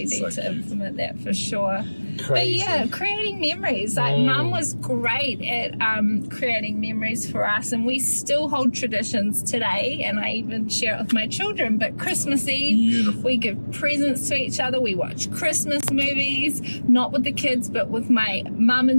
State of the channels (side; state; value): both; inverted; correlation -1.00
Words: need So to cute. implement that for sure. Crazy. But yeah, creating memories. Like Mum was great at creating memories for us, and we still hold traditions today. And I even share it with my children. But Christmas Eve, Beautiful. we give presents to each other. We watch Christmas movies, not with the kids, but with my mum